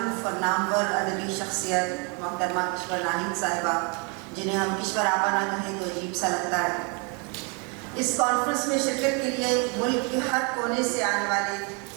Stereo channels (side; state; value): left; quieter; 33.7 dB